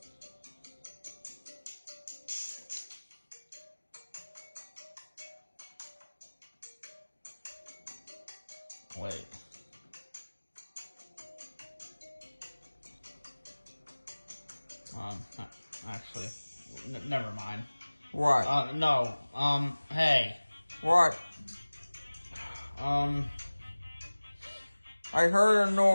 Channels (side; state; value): both; inverted; correlation -1.00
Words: Wait. Actually, never mind. What? No, hey. What? I heard a